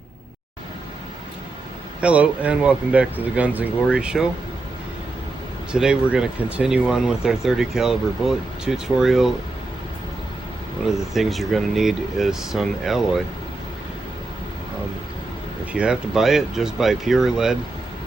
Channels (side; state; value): left; quieter; 3.1 dB